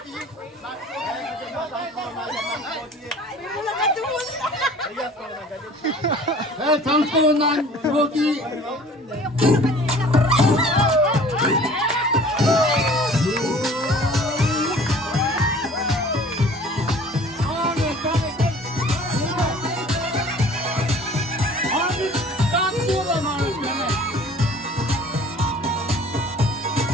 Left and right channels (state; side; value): normal; both; correlation 0.49